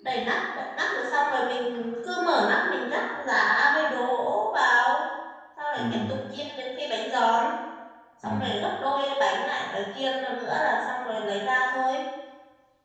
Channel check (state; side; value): identical; both; correlation 1.00